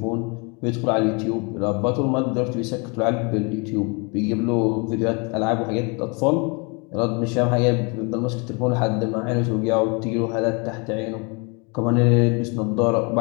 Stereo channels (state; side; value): quieter; right; 31.8 dB